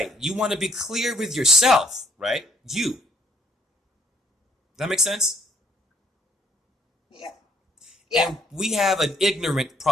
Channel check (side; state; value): both; normal; correlation 0.64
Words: You want to be clear with yourself, right? You. Does that make sense? Yeah. Yeah. And we have an ignorance